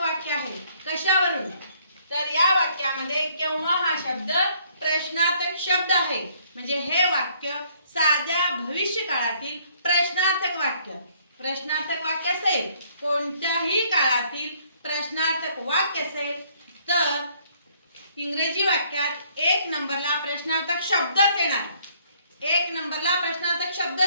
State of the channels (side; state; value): both; inverted; correlation -0.64